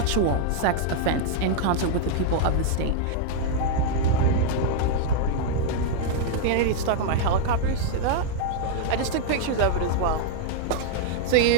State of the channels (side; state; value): both; different; correlation -0.01